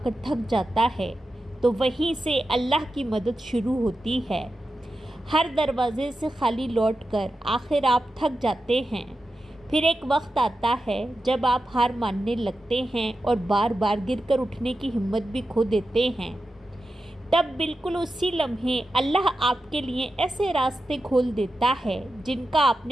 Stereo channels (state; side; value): normal; both; correlation 0.91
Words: کر تھک جاتا ہے تو وہیں سے اللہ کی مدد شروع ہوتی ہے۔ ہر دروازے سے خالی لوٹ کر آخر آپ تھک جاتے ہیں۔ پھر ایک وقت آتا ہے جب آپ ہار ماننے لگتے ہیں اور بار بار گر کر اٹھنے کی ہمت بھی کھو دیتے ہیں۔ تب بالکل اسی لمحے اللہ آپ کے لیے ایسے راستے کھول دیتا ہے جن کا آپ